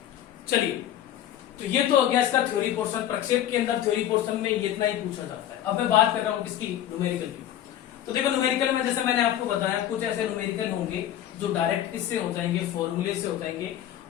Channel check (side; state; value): right; quieter; 11.6 dB